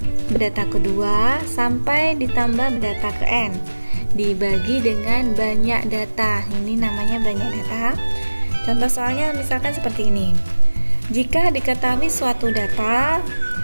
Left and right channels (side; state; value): both; inverted; correlation -1.00